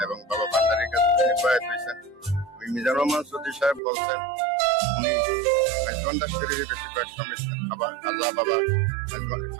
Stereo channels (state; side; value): drops out; left; at 3.8 s